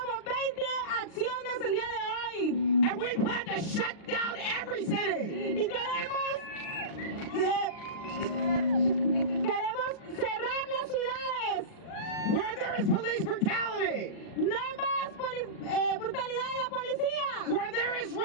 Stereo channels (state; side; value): late; right; 39 ms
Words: 20 acciones el día de hoy. And we plan to shut down every city. Y queremos cerrar las ciudades. Where there is police brutality. No más brutalidad de la policía. Where there is